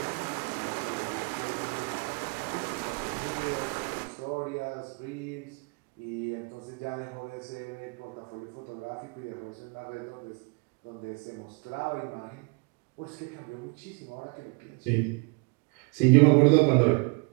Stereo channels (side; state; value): left; quieter; 31.6 dB